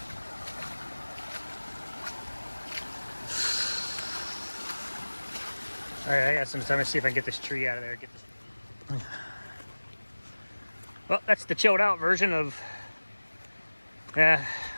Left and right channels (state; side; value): inverted; both; correlation -1.00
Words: All right, I got some time to see if I can get this tree out of there. Get this. Well, that's the chilled out version of,